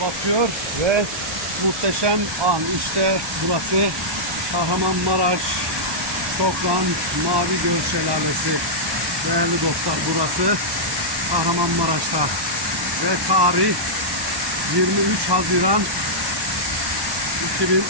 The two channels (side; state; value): left; late; 1.1 ms